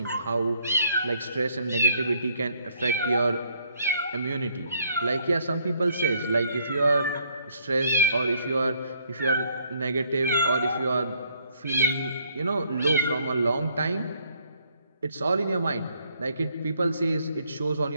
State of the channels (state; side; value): inverted; both; correlation -0.66